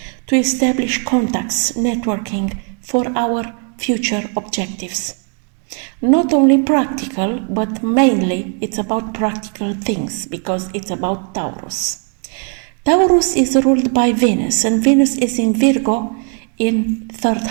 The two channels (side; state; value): left; quieter; 39.8 dB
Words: to establish contacts, networking for our future objectives. Not only practical, but mainly it's about practical things, because it's about Taurus. Taurus is ruled by Venus, and Venus is in Virgo in 3rd